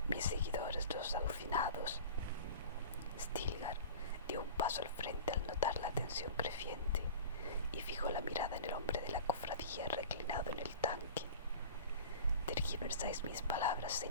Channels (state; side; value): inverted; both; correlation -0.37